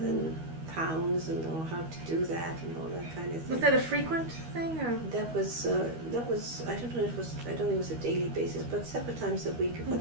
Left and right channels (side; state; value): left; late; 13 ms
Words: pounds, and how to do that and all that kind of thing. Was that a frequent thing, or? That was I don't know. I don't think it was a daily basis, but several times a week for